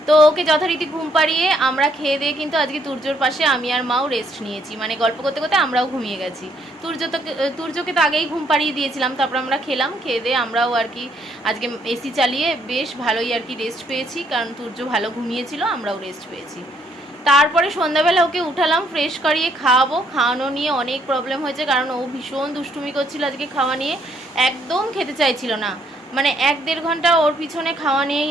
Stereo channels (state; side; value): normal; both; correlation 0.69